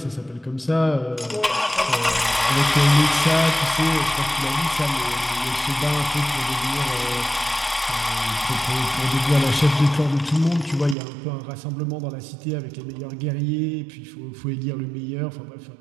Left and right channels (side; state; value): left; drops out; at 11.0 s